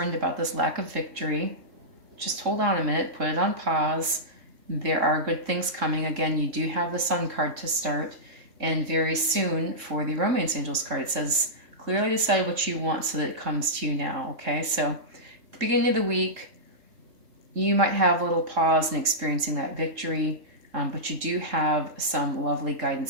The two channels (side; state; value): left; late; 3.7 ms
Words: about this lack of victory, just hold on a minute, put it on pause. There are good things coming. Again, you do have the Sun card to start. And very soon for the Romance Angels card, it says, clearly decide what you want so that it comes to you now, okay? So at the beginning of the week, you might have a little pause in experiencing that victory, but you do have some lovely